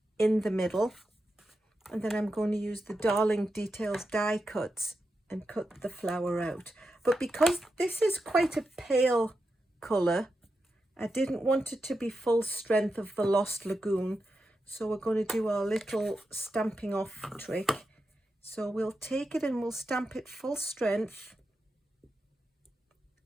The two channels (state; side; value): normal; both; correlation 0.88